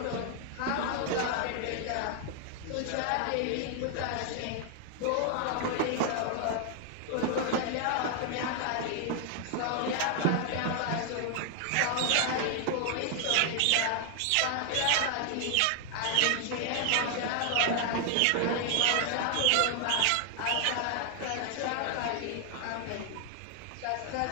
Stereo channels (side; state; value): both; different; correlation 0.00